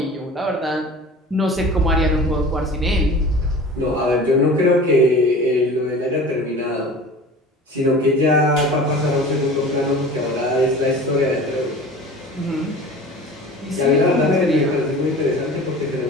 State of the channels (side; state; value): both; normal; correlation 0.39